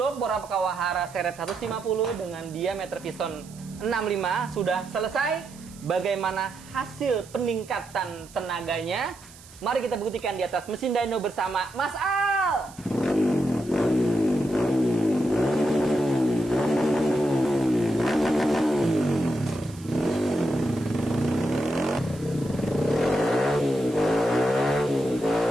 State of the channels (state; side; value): noise; right; hiss, 21 dB below the sound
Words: bor Kawahara seret 150 dengan diameter piston 65 sudah selesai. Bagaimana hasil peningkatan tenaganya? Mari kita buktikan di atas mesin dyno bersama Mas Al.